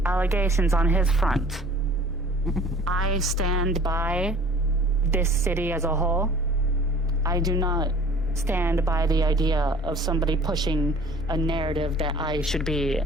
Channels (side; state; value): both; normal; correlation 0.48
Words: allegations on his front, I stand by this city as a whole. I do not stand by the idea of somebody pushing a narrative that I should be